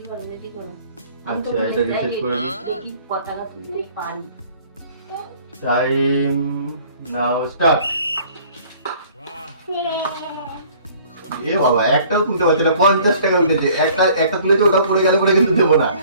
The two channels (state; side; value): inverted; both; correlation -0.54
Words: রেডি করো। আচ্ছা এটা রিসেট করে নি। দেখি কত টাকা তুলতে পারি। টাইম নাও স্টার্ট। এ বাবা, একটাও তুলতে পারছে না। 50 টাকা উঠেছে। একটা তুলেছে, ওটা পড়ে গেলে পরে কিন্তু দেবো না।